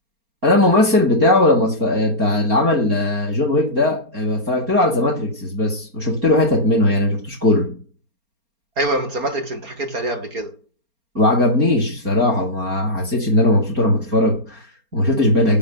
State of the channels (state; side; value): late; left; 4.3 ms